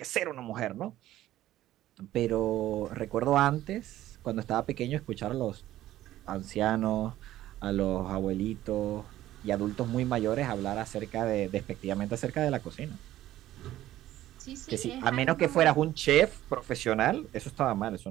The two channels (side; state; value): left; quieter; 14.1 dB